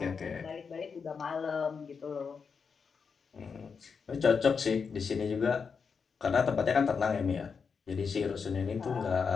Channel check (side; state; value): right; quieter; 5.7 dB